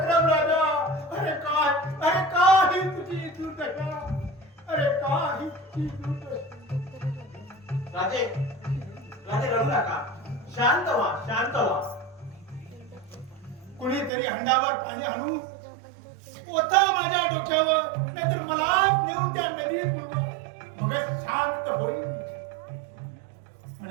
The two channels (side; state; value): left; drops out; at 14.1 s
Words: राजा, अरे काही तुझी दुर्दशा, अरे काही तुझी दुर्दशा. राजे राजे रडू नका. शांत व्हा, शांत व्हा. कुणीतरी हंडावर पाणी आणू ओता माझ्या डोक्यावर, नाहीतर मला नेऊन त्या नदीत मग शांत होईल.